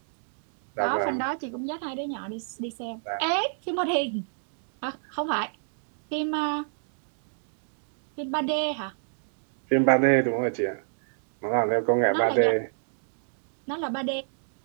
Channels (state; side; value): silent; left; digital silence